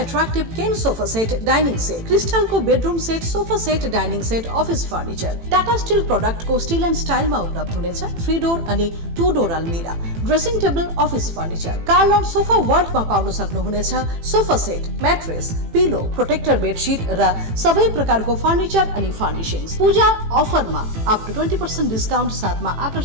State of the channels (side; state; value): left; late; 18 ms